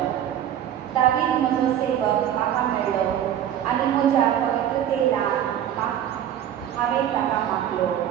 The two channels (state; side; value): quieter; left; 10.5 dB